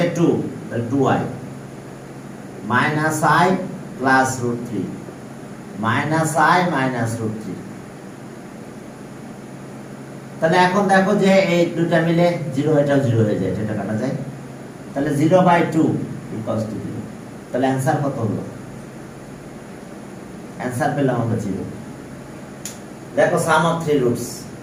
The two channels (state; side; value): identical; both; correlation 1.00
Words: 2 তাহলে 2i minus I plus root 3 minus I minus root 3 তাহলে এখন দেখো যে এই দুটো মিলে 0 এটাও 0 হয়ে যায় এটা কাটা যায় তাহলে 0 by 2 equals to 0 তাহলে आंसर কত হলো आंसर পেলাম আমরা 0 দেখো sum of 3 roots